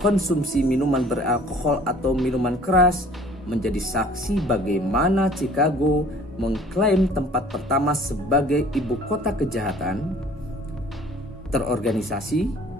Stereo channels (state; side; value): normal; both; correlation 0.51